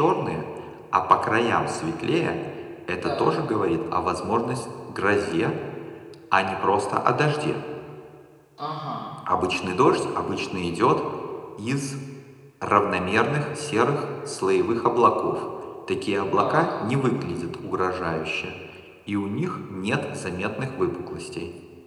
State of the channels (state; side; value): identical; both; correlation 1.00